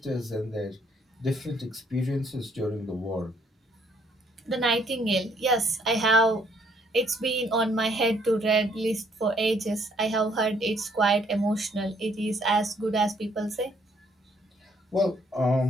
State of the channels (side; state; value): both; normal; correlation 0.66